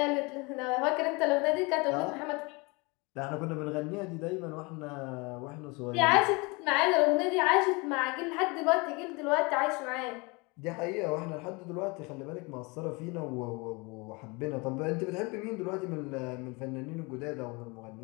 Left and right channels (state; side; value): quieter; right; 27.6 dB